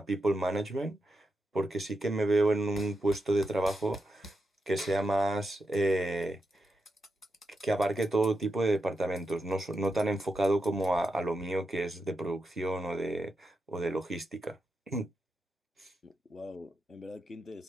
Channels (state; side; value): normal; both; correlation 0.86